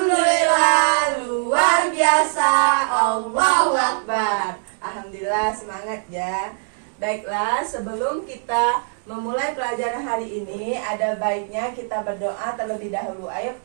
luar biasa, Allahu Akbar. Alhamdulillah, semangat ya. Baiklah, sebelum kita memulai pelajaran hari ini, ada baiknya kita berdoa terlebih dahulu. Ayo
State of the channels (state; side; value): silent; left; digital silence